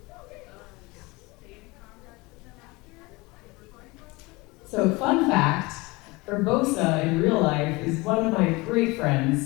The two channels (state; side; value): quieter; right; 23.9 dB